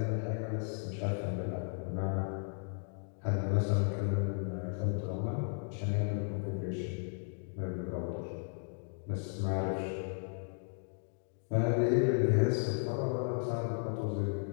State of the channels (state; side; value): silent; right; 54 dB below the other